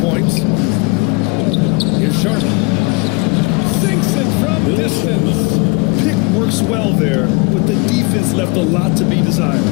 points. Here's Sharman. Sinks it from distance. Pick works well there, but the defense left a lot to be desired.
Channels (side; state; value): right; quieter; 26.4 dB